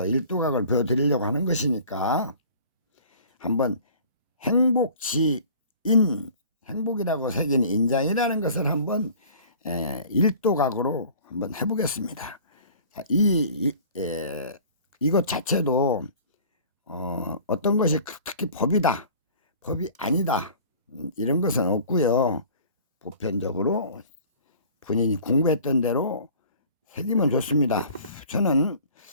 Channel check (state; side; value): inverted; both; correlation -0.47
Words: 일도각을 보여드리려고 하는 것이니까 한번 행복지인, 행복이라고 새긴 인장이라는 것을 한번 일도각으로 한번 해보겠습니다. 자, 이것 자체도 어떤 것이 특히 법이다, 법이 아니다, 이런 것은 없고요. 보편적으로 본인이 공부했던 대로 새기면 좋습니다. 저는